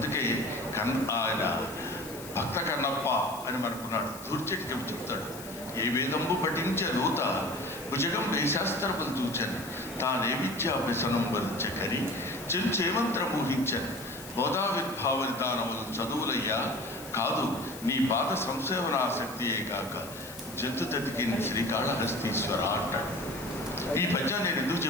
ఆయన భక్త కన్నప్ప అని మనకున్నాడు. దూర్చెట్టు చెప్తాడు, ఏ వేదంబు పఠించే దూత భుజగం వేశాస్త్రములు చూచని, తానే విద్యాభ్యసనం వరించకరి చెంచేమంత్ర ఊహించని, బోధావిర్భావనిదానములు చదువులయ్యా కాదు, నీ పాద సంసేవనాసక్తియే కాక జంతు తతికిన శ్రీకాళహస్తీశ్వర అంటాడు. ఈ పద్యం నేను ఎందుకు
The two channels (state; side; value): noise; left; hiss, 15 dB below the sound